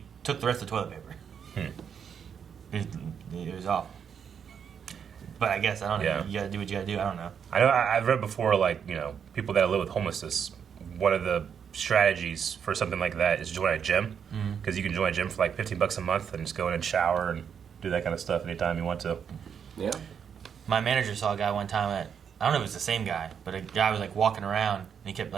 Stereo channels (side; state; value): left; quieter; 7.5 dB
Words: took the rest of the toilet paper. It was awful. But I guess, I don't know. Yeah. You gotta do what you gotta do. I don't know. I know I've read before, like, you know, people that live with homelessness, one of the strategies for something like that is join a gym. Because you can join a gym for like $15 a month and just go in and shower and do that kind of stuff anytime you want to. Yeah. My manager saw a guy one time I don't know if it was the same guy, but a guy was like walking around and he kept